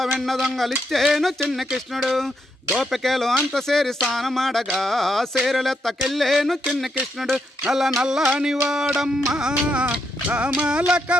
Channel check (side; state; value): both; normal; correlation 0.79